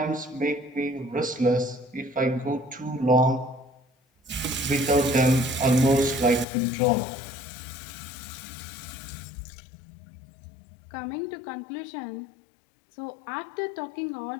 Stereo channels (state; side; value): drops out; right; at 6.5 s